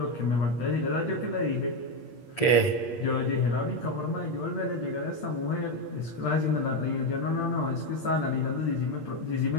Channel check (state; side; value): late; right; 8.5 ms